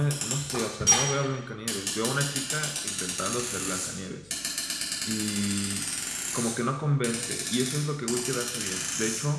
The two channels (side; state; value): left; noise; hum, 28 dB below the sound